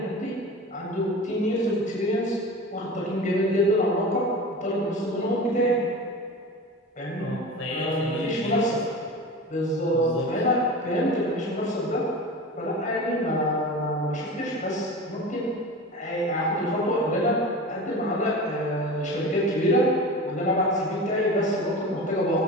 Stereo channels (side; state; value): both; normal; correlation 0.32